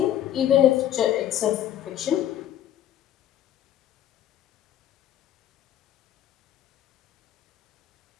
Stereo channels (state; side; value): quieter; right; 11.5 dB